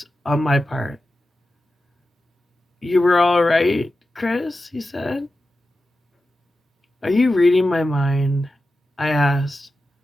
on my part. You were all right, Chris, he said. Are you reading my mind? I asked.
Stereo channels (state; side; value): normal; both; correlation 0.92